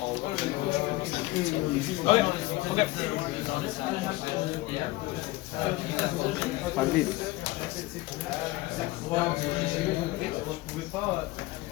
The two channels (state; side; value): quieter; right; 19.4 dB